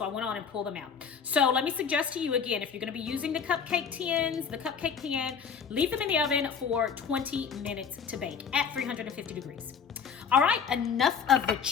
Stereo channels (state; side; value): quieter; right; 6.5 dB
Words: I went on and pulled them out. So let me suggest to you again, if you're gonna be using the cupcake tins, the cupcake pan, leave them in the oven for 20 minutes to bake at 350 degrees. All right, enough of the